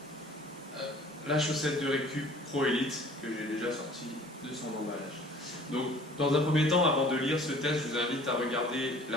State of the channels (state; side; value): normal; both; correlation 0.51